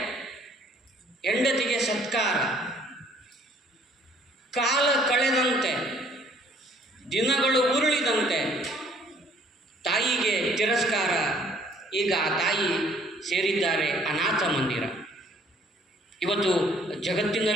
ಹೆಂಡತಿಗೆ ಸತ್ಕಾರ. ಕಾಲ ಕಳೆದಂತೆ, ದಿನಗಳು ಉರುಳಿದಂತೆ ತಾಯಿಗೆ ತಿರಸ್ಕಾರ. ಈಗ ಆ ತಾಯಿ ಸೇರಿದ್ದಾರೆ ಅನಾಥ ಮಂದಿರ. ಇವತ್ತು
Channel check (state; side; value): normal; both; correlation 0.60